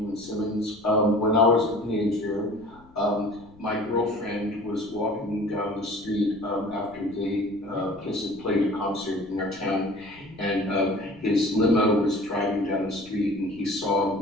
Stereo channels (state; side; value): noise; left; rumble, 25 dB below the sound